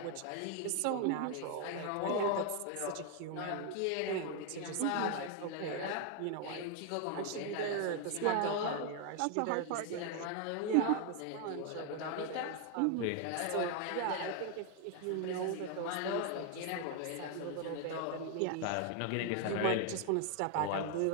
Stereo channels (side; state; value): both; different; correlation 0.01